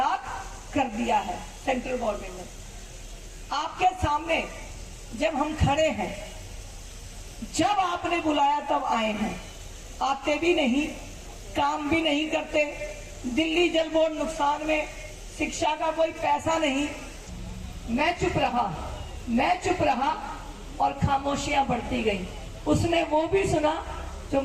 कर दिया है सेंट्रल गवर्नमेंट ने। आपके सामने जब हम खड़े हैं, जब आपने बुलाया तब आए हैं, आते भी नहीं, काम भी नहीं करते, दिल्ली जल बोर्ड नुकसान में, शिक्षा का कोई पैसा नहीं। मैं चुप रहा और खामोशियां बढ़ती गई। उसने वो भी सुना जो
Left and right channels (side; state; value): both; identical; correlation 1.00